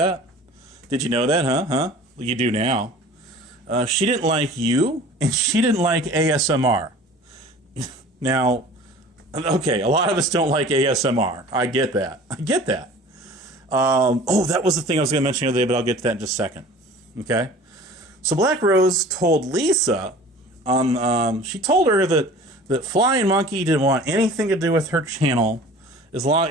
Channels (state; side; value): normal; both; correlation 0.44